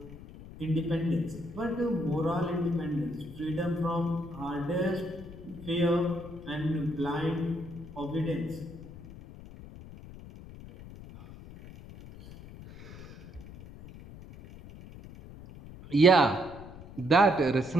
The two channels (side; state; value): left; noise; rumble, 16 dB below the sound